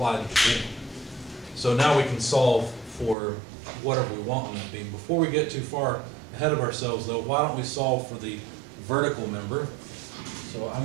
to the beam. So now we can solve for whatever we want on that beam. Before we get too far ahead of ourselves, though, why don't we solve for the vertical member? So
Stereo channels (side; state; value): left; drops out; at 3.2 s